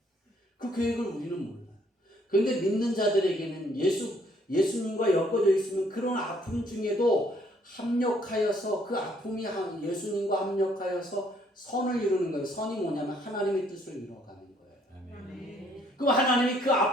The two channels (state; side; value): normal; both; correlation 0.65